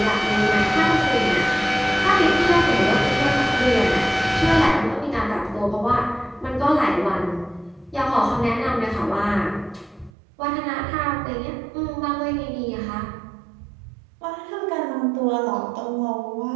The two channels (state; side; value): drops out; left; at 10.1 s